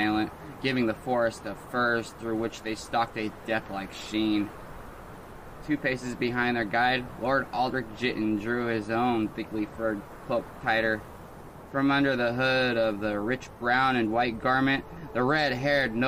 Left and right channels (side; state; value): both; identical; correlation 1.00